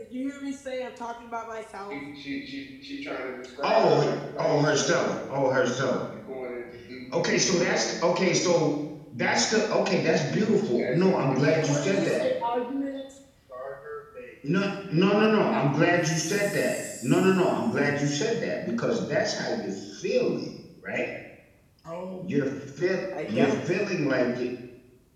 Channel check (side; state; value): both; identical; correlation 1.00